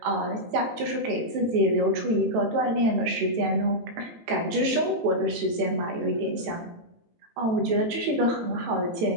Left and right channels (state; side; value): late; left; 18 ms